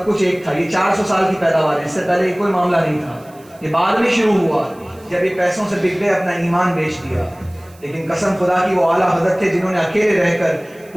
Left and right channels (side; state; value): right; noise; hiss, 28 dB below the sound